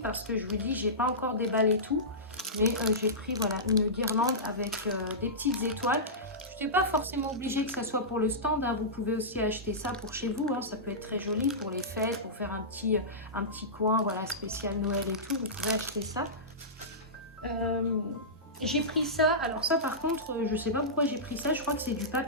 que je vous dis, j'ai pas encore déballé tout. Mais j'ai pris voilà, une guirlande avec des petites étoiles. Je n'ai pas forcément obligé que ça soit pour le stand. Hein. Vous pouvez aussi acheter ça pour chez vous. Hein. Ça peut être très joli pour les fêtes, pour faire un petit coin voilà, spécial Noël et tout. Vous pouvez acheter ça. J'ai pris ça. Alors ça par contre, je ne sais pas pourquoi j'ai pris ça. Je crois que c'est du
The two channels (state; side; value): normal; both; correlation -0.17